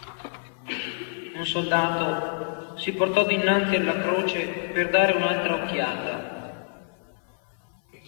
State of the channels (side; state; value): right; silent; 57 dB below the other